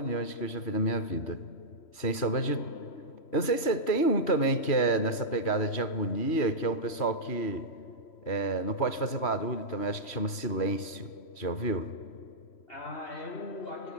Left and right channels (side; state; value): right; late; 3.1 ms